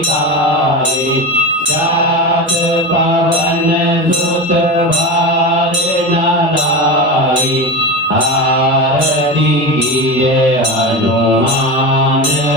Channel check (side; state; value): both; normal; correlation 0.23